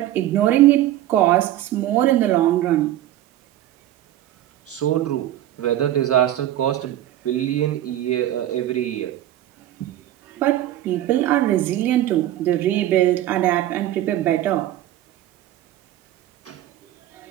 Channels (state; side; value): quieter; left; 13.3 dB